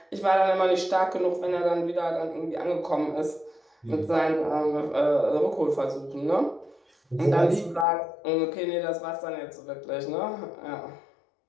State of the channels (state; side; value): drops out; right; at 7.9 s